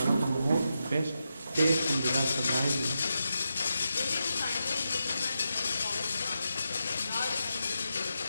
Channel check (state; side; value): inverted; both; correlation -0.87